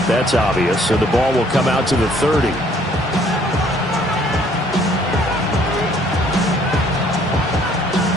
That's obvious. So the ball will come out to the 30.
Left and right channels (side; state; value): both; normal; correlation 0.61